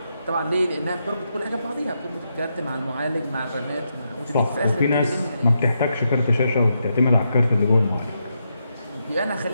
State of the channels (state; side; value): inverted; both; correlation -0.83